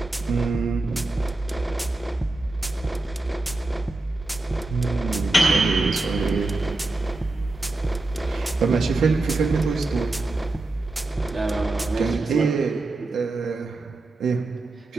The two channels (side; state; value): left; quieter; 3.0 dB